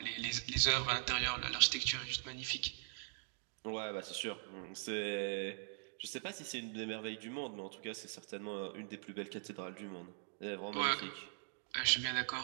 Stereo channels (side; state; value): left; silent; 50 dB below the other